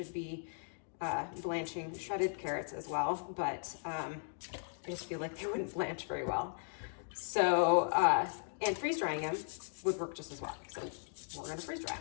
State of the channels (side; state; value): right; silent; digital silence